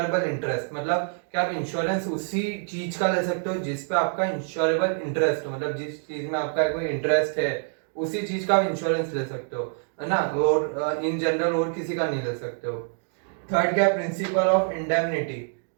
interest. मतलब क्या आप इंश्योरेंस उसी चीज का ले सकते हो जिस पे आपका इंश्योरेबल इंटरेस्ट हो, मतलब जिस चीज में आपका कोई इंटरेस्ट है उसी चीज का आप इंश्योरेंस ले सकते हो, है ना। और इन जनरल और किसी का नहीं ले सकते हो। थर्ड क्या? Principle of indemnity.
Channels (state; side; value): silent; left; 56 dB below the other